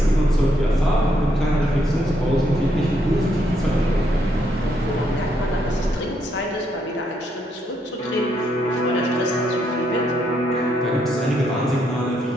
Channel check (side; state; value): both; normal; correlation 0.75